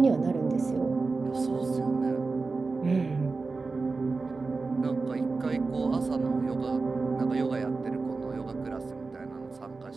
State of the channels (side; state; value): left; quieter; 4.0 dB